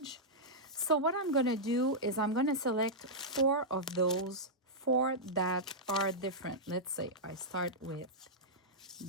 So what I'm gonna do is I'm gonna select 4 of those, 4 that are different. Let's say I start with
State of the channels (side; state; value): both; normal; correlation -0.10